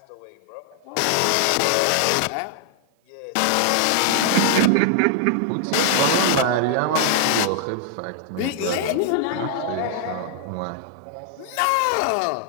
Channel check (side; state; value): both; different; correlation -0.01